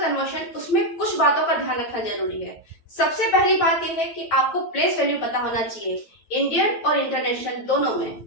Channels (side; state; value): right; late; 9.2 ms